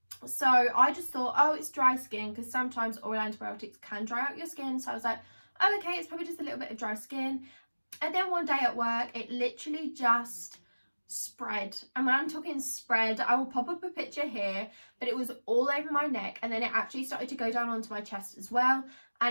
So I just thought, oh, it's dry skin, because sometimes oral antibiotics can dry out your skin. So I was like, oh, okay, it's probably just a little bit of dry skin. And then one day at work, it literally just spread. And when I'm talking spread, I will pop up a picture here, but it was all over my neck, and then it actually started to go down onto my chest as well,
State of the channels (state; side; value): inverted; both; correlation -1.00